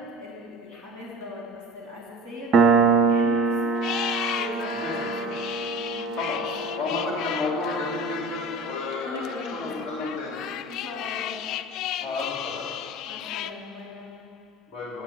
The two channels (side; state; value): both; normal; correlation 0.38